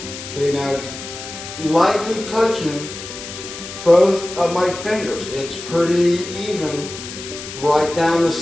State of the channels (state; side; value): noise; left; hiss, 11 dB below the sound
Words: See, now it's lightly touching both of my fingers. It's pretty even right down the